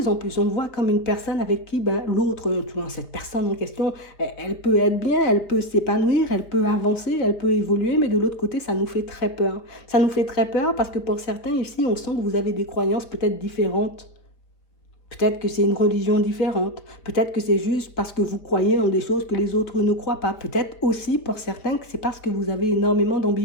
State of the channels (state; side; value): late; right; 4.3 ms